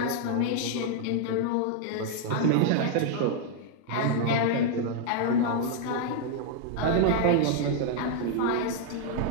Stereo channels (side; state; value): both; different; correlation 0.00